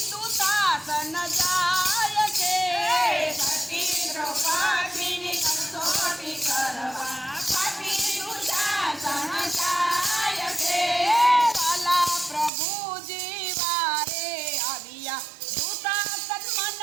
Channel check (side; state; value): left; drops out; at 12.5 s